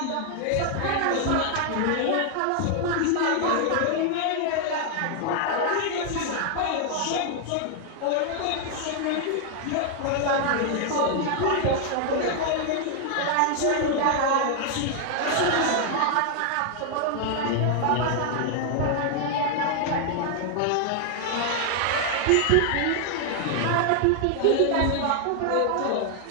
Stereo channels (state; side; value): different; both; correlation 0.00